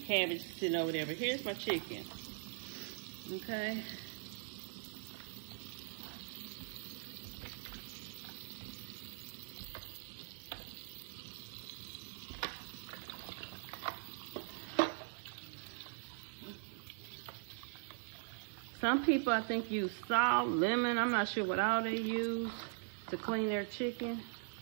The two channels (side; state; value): left; silent; 50 dB below the other